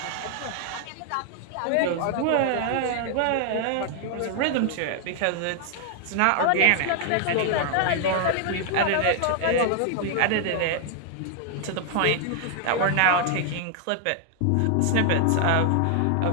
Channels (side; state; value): both; different; correlation 0.00